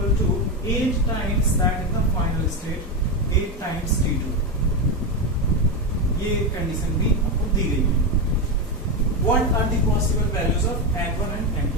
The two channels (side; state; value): both; normal; correlation 0.11